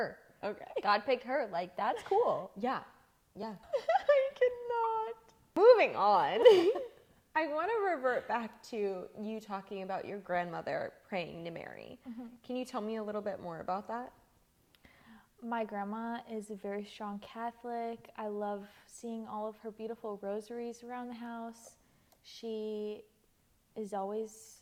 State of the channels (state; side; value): identical; both; correlation 1.00